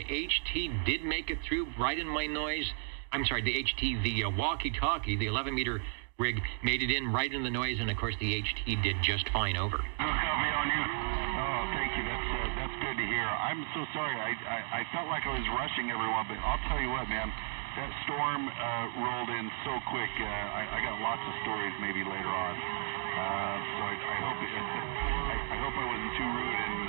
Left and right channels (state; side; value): silent; left; 55 dB below the other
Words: HT did make it through right in my noise. I'm sorry, the HT, the walkie-talkie, the 11-meter rig made it in right in the noise, and of course the HT did just fine over. Copy on you. Oh, thank you. That's good to hear. I'm so sorry. I felt like I was rushing everyone, but I'll tell you what, man. That storm rolled in so quick. I got lots of stories maybe later on. So I hope I wasn't too rude and